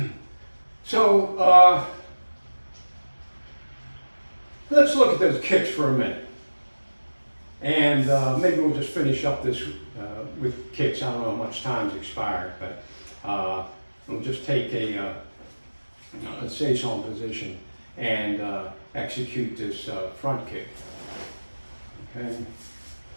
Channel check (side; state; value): both; inverted; correlation -1.00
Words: So let's look at those kicks for a minute. And maybe we'll just finish up this with kicks. I don't know how much time's expired, but we'll just take a seison position and execute this front kick. Okay.